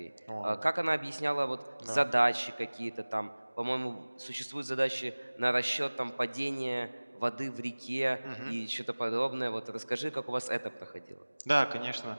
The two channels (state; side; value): inverted; both; correlation -1.00